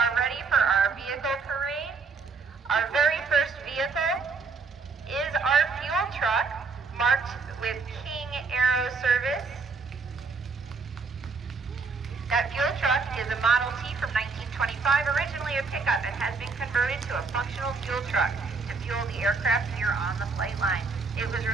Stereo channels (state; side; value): quieter; left; 4.6 dB